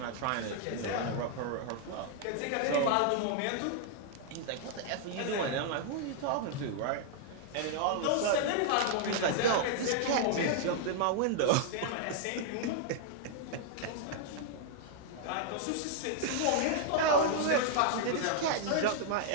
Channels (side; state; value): both; different; correlation -0.01